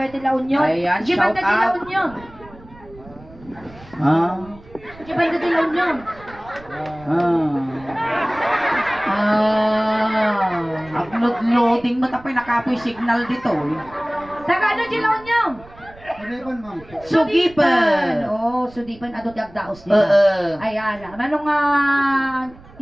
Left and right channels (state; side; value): noise; right; rumble, 22 dB below the sound